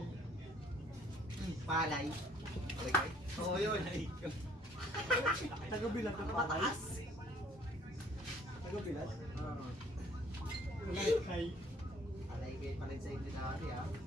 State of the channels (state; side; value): normal; both; correlation 0.59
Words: palay. Alagay? Oo, yun. Taga-bilat na Mataas. Taga-bilat? Oo. Kay. Alay kayo pala sa inyo dati, ah.